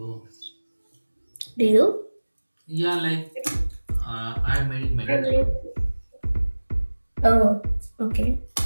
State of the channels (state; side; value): inverted; both; correlation -1.00